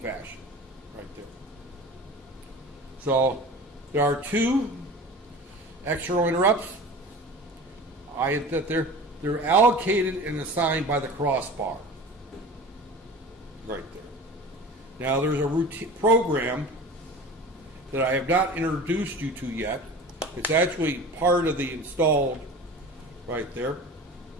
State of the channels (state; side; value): normal; both; correlation 0.37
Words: Right there. So there are two external interrupts. That they're allocated and assigned by the crossbar. Right there. Now there's a routine program that I have not introduced you to yet. It's actually part of the installed right there.